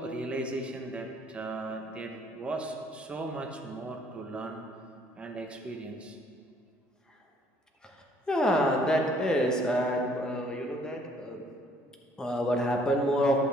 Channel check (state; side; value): normal; both; correlation 0.62